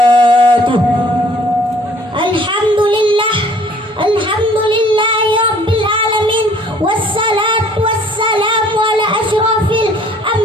Alhamdulillah, alhamdulillahi rabbil alamin, wassalatu wassalamu ala asyrafil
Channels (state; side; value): normal; both; correlation 0.56